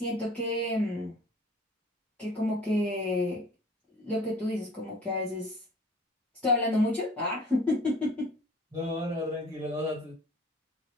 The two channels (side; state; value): both; normal; correlation 0.48